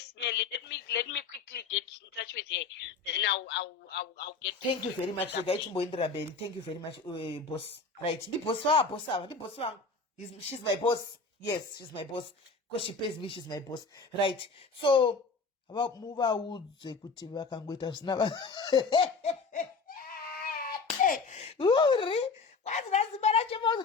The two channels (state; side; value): quieter; right; 4.3 dB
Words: Let me quickly get in touch with her. Then I'll get. Thank you very much. Thank you very much, boss. Right, the boss wangu. She's my boss. Yes, she's my boss. Because she pays me, she's my boss. Right. So about move out kuti vakangoita zvisina What's that